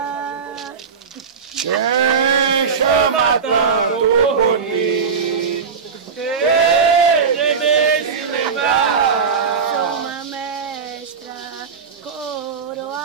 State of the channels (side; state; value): left; quieter; 5.8 dB